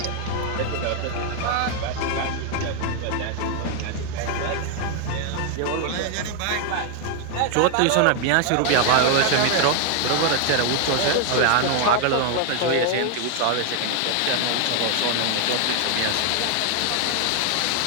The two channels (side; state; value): both; different; correlation 0.00